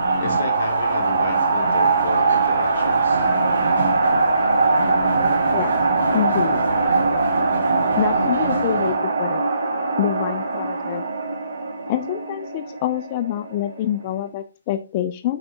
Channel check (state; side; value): inverted; both; correlation -0.70